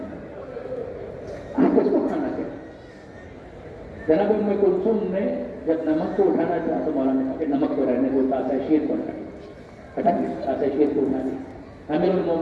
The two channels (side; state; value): both; identical; correlation 1.00